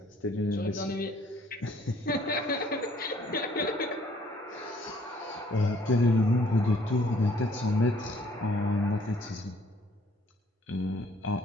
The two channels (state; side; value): normal; both; correlation 0.61